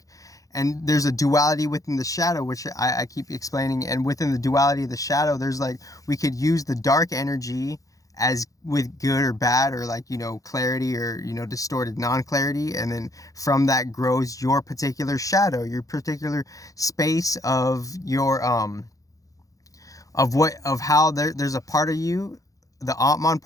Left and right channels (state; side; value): late; right; 0.17 ms